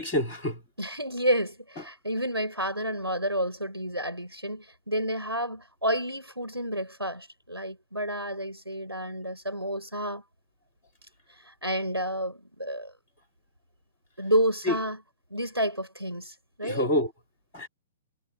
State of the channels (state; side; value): inverted; both; correlation -0.50